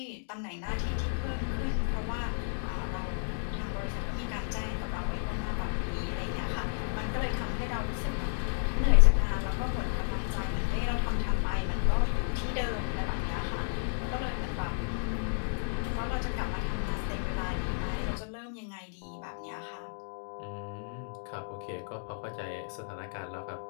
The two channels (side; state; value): right; silent; digital silence